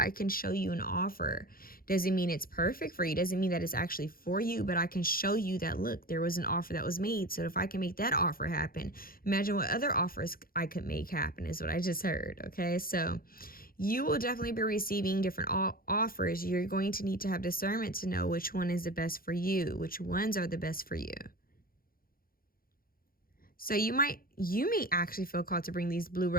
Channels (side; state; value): right; late; 0.42 ms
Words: can show you an offer. Doesn't mean it's perfect for you. Doesn't mean that it's actually for you, but I can show you that, look, there was an offer that was made. So if I can make that offer happen, imagine what other offers I could make happen, is what I just heard. Okay, so you will definitely be receiving different offers. You're going to need to have discernment to know which one is the best for you, which ones are the best for you. So you may actually feel called to bring these blue